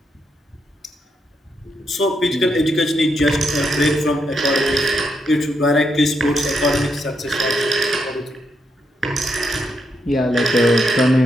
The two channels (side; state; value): both; normal; correlation 0.80